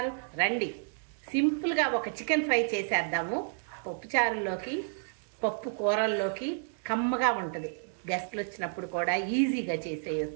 రండి, సింపుల్గా ఒక చికెన్ ఫ్రై చేసేద్దాము. పప్పు చారుల్లోకి, పప్పు కూరల్లోకి కమ్మగా ఉంటుంది. గెస్ట్లు వచ్చినప్పుడు కూడా ఈజీగా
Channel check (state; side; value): silent; left; digital silence